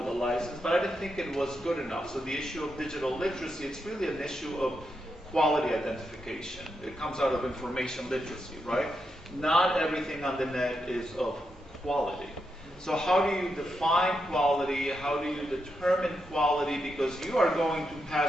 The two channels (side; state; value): both; normal; correlation 0.84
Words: a license, but I didn't think it was good enough. So the issue of digital literacy, it's really an issue of quality identification. It comes out of information literacy, right? Not everything on the net is of quality. So how do you define quality? How do you determine quality? Because you are going to